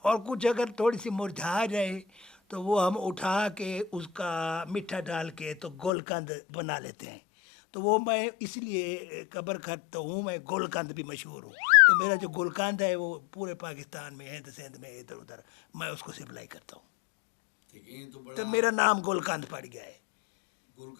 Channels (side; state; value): right; drops out; at 5.9 s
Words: اور کچھ اگر تھوڑی سی مرجھا جائے تو وہ ہم اٹھا کے اس کا میٹھا ڈال کے تو گولکند بنا لیتے ہیں۔ تو وہ میں اس لیے قبر کھٹ تو ہوں، میں گولکند بھی مشہور ہوں۔ تو میرا جو گولکند ہے وہ پورے پاکستان میں، ہند سندھ میں، ادھر ادھر میں اس کو سپلائی کرتا ہوں۔ دیکھیں، یہ تو تو بڑا میرا نام گولکند پڑ گیا ہے۔